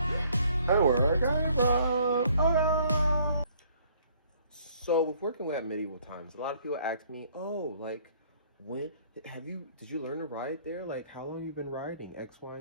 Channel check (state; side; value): inverted; both; correlation -0.62